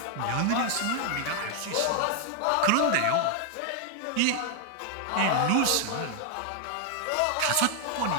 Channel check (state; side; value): different; both; correlation 0.00